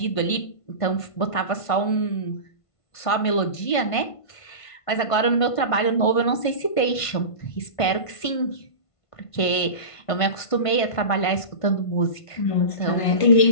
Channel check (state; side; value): late; right; 1.5 ms